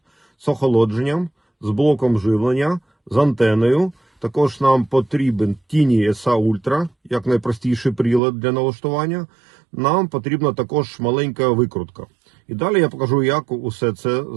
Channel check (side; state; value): left; drops out; at 8.2 s